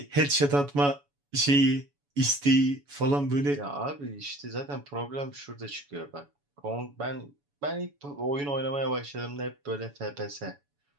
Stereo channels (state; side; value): late; left; 7.0 ms